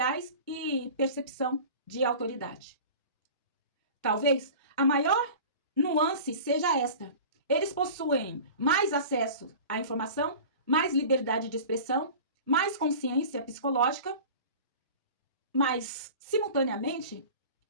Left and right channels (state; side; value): inverted; both; correlation -0.39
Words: e percepção de autoridade. Talvez a maior nuance seja esta: eles possuem mais acesso à informação, mais liberdade de expressão, mais consciência psicológica, mas, simultaneamente,